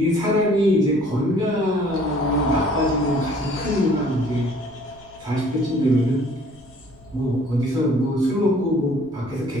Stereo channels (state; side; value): noise; left; rumble, 26 dB below the sound